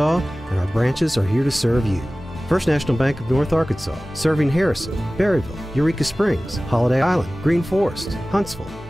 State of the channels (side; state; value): both; normal; correlation 0.97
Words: and our branches are here to serve you. First National Bank of North Arkansas, serving Harrison, Berryville, Eureka Springs, Holiday Island, Green Forest, Huntsville,